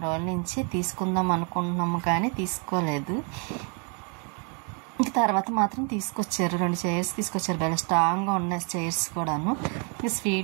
రోజుల నుంచి తీసుకుందాం అనుకుంటున్నాము కానీ తీసుకోలేదు. ఇంక తర్వాత మాత్రం తీసుకొచ్చారు, 2 చైర్స్ తీసుకొచ్చారు. భలే స్ట్రాంగ్గా ఉన్నాయి చైర్స్ కూడాను.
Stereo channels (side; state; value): left; quieter; 36.9 dB